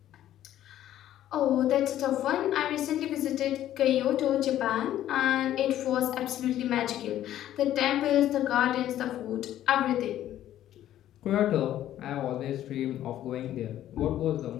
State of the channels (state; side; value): quieter; right; 12.3 dB